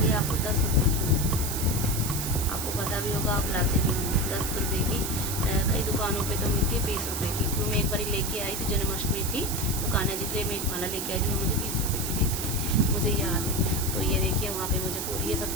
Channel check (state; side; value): noise; right; hiss, 4 dB below the sound